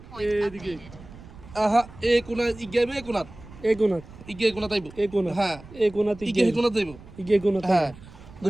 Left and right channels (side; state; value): right; noise; rumble, 18 dB below the sound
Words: এদিকে আহা এ কোনা ইগাইব এ কোনাত এই কোণাত ইগে কোনাত আইব এই কোণা হ্যাঁ এই কোণাত ইগে কোনাত আইব ইগে কোণাত হ্যাঁ